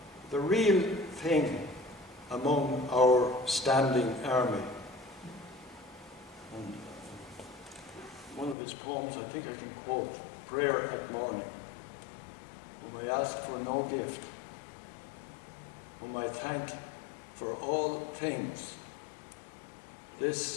the real thing among our standing army. And one of his poems, I think I can quote, Prayer at Morning, whom I ask for no gift, whom I thank for all things.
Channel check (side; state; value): right; drops out; at 8.6 s